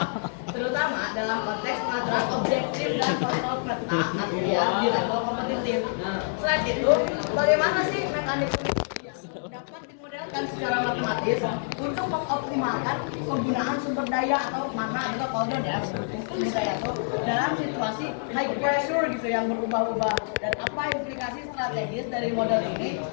terutama dalam konteks pengaturan objektif dan kontrol peta artinya di level kompetitif. Selain itu, bagaimana sih mekanik dapat dimodelkan secara matematis untuk mengoptimalkan penggunaan sumber daya atau mana atau cooldown ya sumber daya itu dalam situasi high pressure gitu yang berubah-ubah, dan apa implikasi strategis dari model ini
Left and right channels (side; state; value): right; silent; digital silence